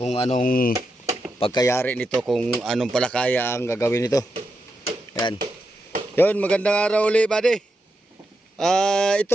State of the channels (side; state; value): both; normal; correlation 0.86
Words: anong pagkayari nito, kung anong palakaya ang gagawin nito. Yan. Yun, magandang araw ulit, buddy.